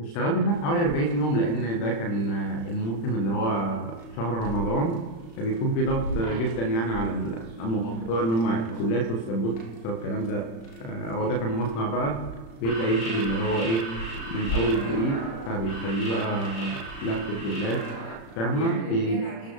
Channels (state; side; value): late; right; 35 ms